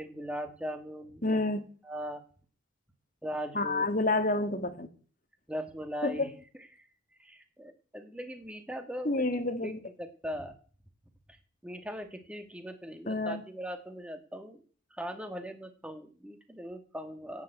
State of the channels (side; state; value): both; normal; correlation 0.27